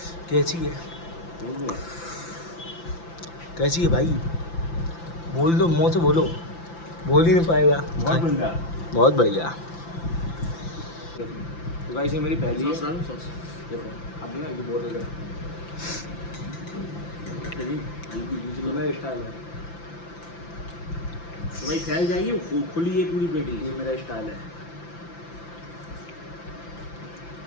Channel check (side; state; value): right; late; 5.9 ms